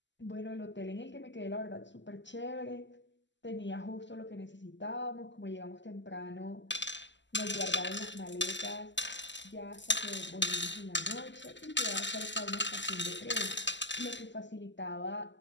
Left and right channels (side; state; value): right; late; 0.53 ms